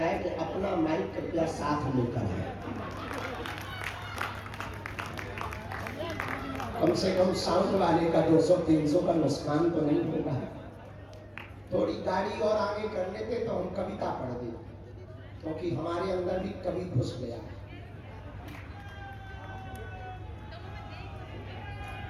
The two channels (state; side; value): identical; both; correlation 1.00